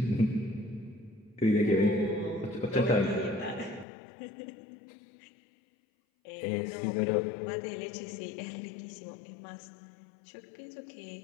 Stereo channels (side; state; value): right; drops out; at 3.9 s